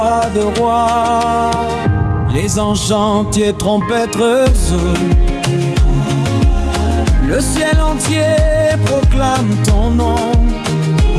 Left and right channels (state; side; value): identical; both; correlation 1.00